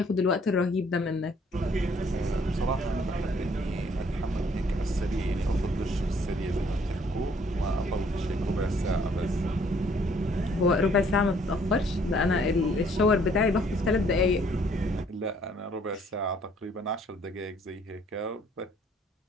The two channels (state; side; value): normal; both; correlation 0.63